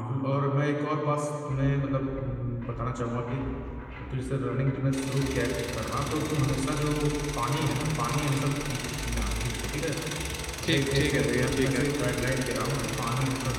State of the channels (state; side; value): identical; both; correlation 1.00